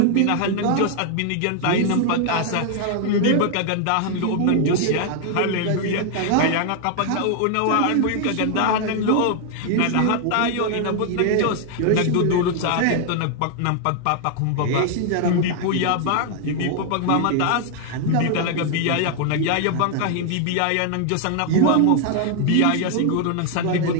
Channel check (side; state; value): both; different; correlation 0.00